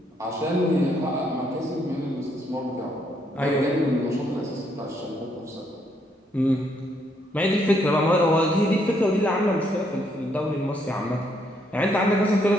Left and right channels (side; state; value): both; normal; correlation 0.73